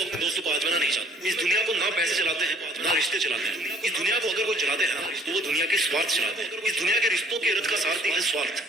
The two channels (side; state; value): both; normal; correlation 0.58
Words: अपने दोस्तों को आजमाना नहीं चाहते। इस दुनिया को ना पैसे चलाते हैं ना रिश्ते चलाते हैं। इस दुनिया को अगर वो चलाते हैं ना तो वो दुनिया के स्वार्थ चलाते हैं। इस दुनिया के रिश्तों के रथ का सारथी है स्वार्थ,